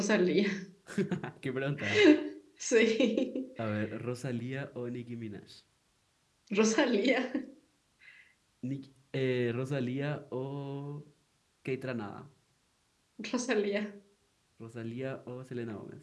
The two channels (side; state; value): both; identical; correlation 1.00